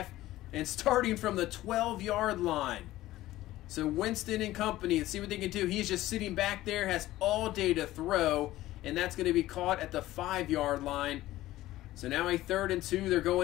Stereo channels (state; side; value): quieter; right; 15.8 dB